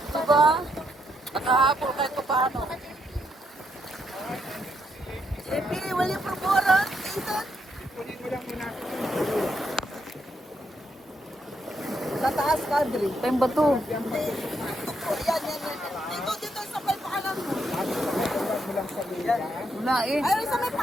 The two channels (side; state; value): both; normal; correlation 0.78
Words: Diba? Nakahapol kahit pa paano. JP, will you promote? Ethan? Kunin mo lang muna. Tataas kadri. Ito yung bato. Yan. Dito sa may paalam mo. Huwag mo lang sa lupa. Wala eh. Ay, sa may